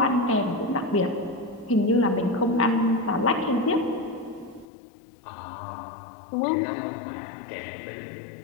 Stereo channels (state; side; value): drops out; right; at 4.7 s